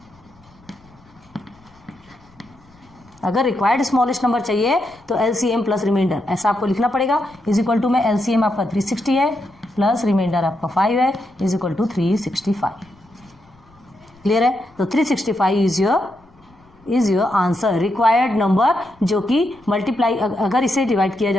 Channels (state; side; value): noise; left; rumble, 29 dB below the sound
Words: अगर रिक्वायर्ड स्मॉलेस्ट नंबर चाहिए तो एलसीएम प्लस रिमाइंडर ऐसा आपको लिखना पड़ेगा। इज इक्वल टू में एलसीएम आपका 360 है प्लस रिमाइंडर आपका 5 है, इज इक्वल टू 365। क्लियर है? तो 365 is your answer, required number, जो कि मल्टीप्लाई अगर इसे डिवाइड किया